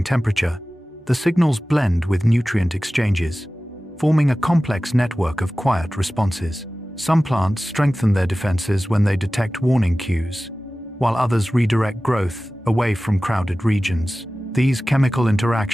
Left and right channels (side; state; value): both; normal; correlation 0.96